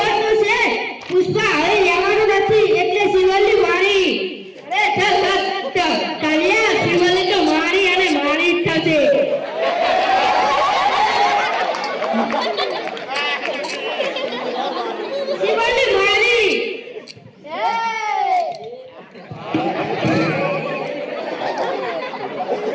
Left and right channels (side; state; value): both; identical; correlation 1.00